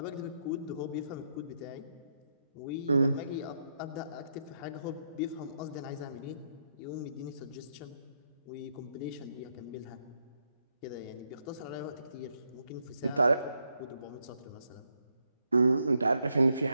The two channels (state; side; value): inverted; both; correlation -0.78